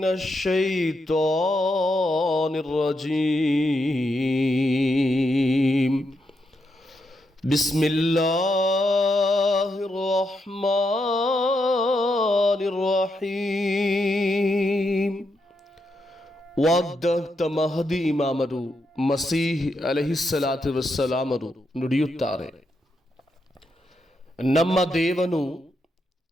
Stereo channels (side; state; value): both; normal; correlation 0.82